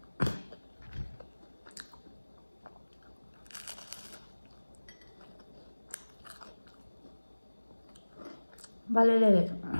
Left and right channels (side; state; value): both; inverted; correlation -1.00